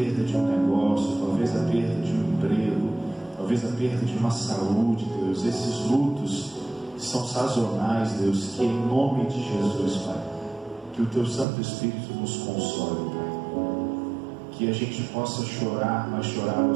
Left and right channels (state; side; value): drops out; left; at 11.5 s